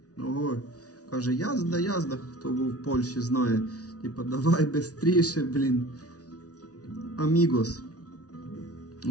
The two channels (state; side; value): late; right; 0.68 ms